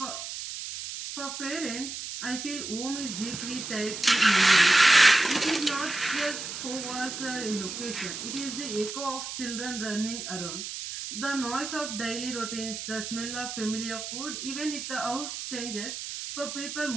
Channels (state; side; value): noise; right; hiss, 7 dB below the sound